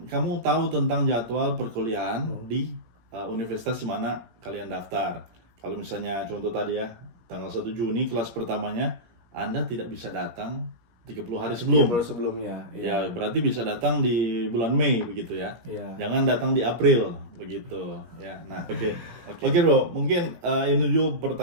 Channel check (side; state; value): left; late; 17 ms